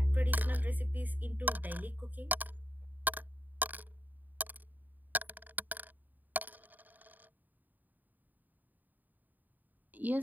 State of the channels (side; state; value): left; late; 0.086 ms